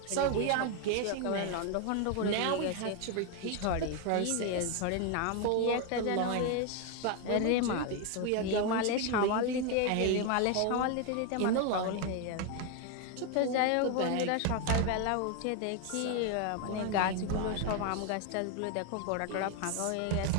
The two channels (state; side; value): different; both; correlation 0.01